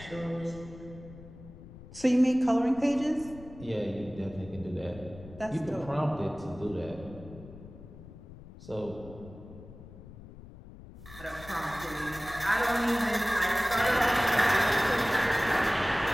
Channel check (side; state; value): left; noise; rumble, 17 dB below the sound